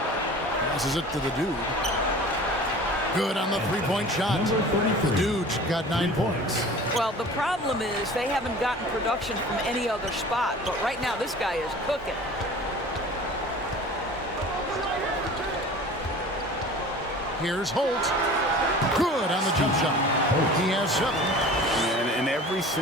Passes it to the dude. Good on the three-point shot. The dude's got 9 points. Well, the problem is they haven't gotten production from any other spot, but right now this guy is cooking. Here's Holt. Good on the jump shot. He has 7. And ever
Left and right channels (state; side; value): normal; both; correlation 0.42